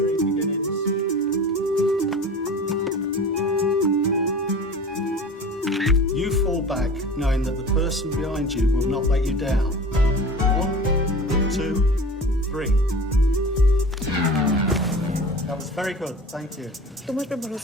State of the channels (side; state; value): both; normal; correlation 0.37